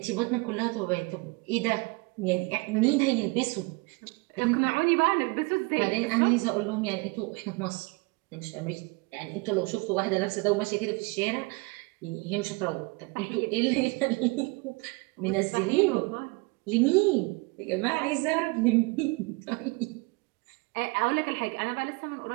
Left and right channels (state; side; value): quieter; left; 27.2 dB